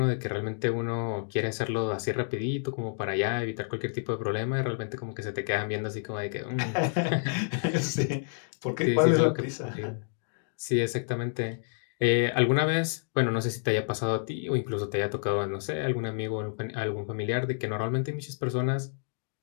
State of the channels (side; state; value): right; silent; digital silence